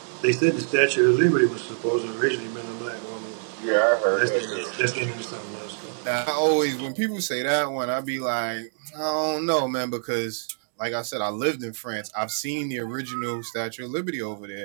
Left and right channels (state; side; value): silent; left; digital silence